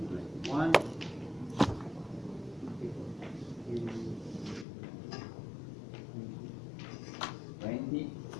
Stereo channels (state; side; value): drops out; right; at 4.7 s